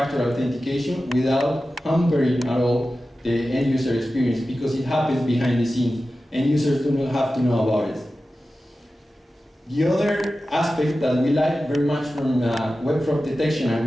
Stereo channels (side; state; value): both; normal; correlation 0.94